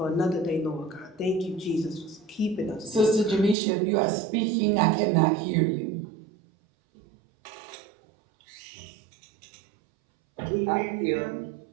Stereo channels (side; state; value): left; drops out; at 3.6 s